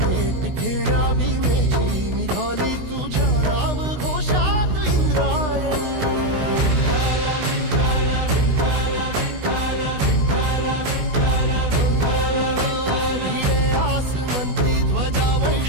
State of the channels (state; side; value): late; left; 16 ms